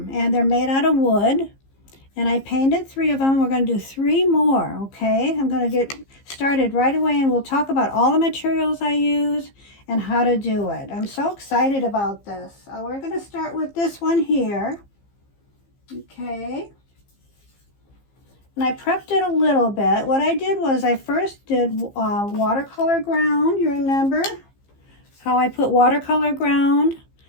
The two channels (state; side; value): late; right; 15 ms